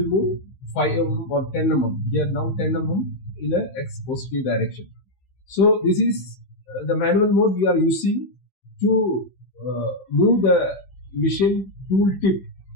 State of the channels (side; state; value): right; late; 15 ms